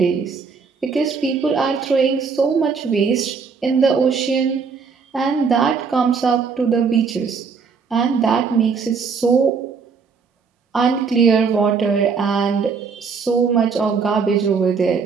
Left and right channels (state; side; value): quieter; left; 5.5 dB